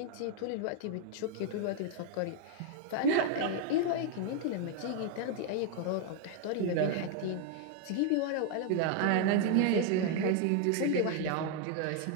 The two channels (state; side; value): different; both; correlation 0.00